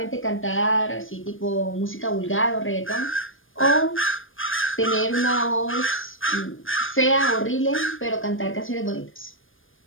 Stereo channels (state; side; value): late; right; 0.59 ms